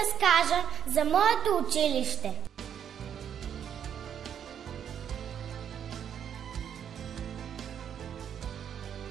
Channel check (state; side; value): quieter; left; 8.7 dB